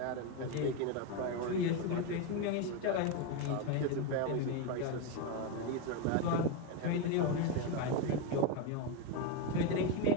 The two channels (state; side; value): different; both; correlation 0.03